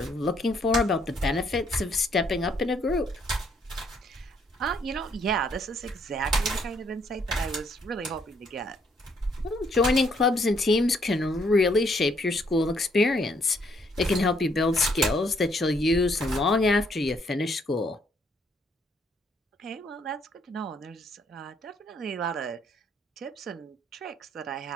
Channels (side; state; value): both; normal; correlation 0.69